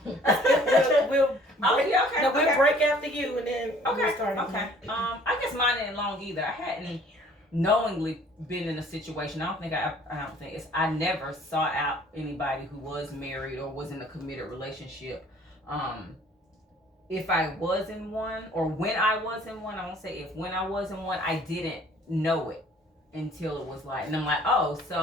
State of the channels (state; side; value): normal; both; correlation 0.55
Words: We'll break after you and then we'll start. Okay. I guess mine ain't long either. I hadn't knowingly been in a situation. I never sought out anybody who was married or was in a committed relationship. If I was in one, or when I was in one, I won't say if, when I was in one, I didn't know it until it was like, and I'm like, oh,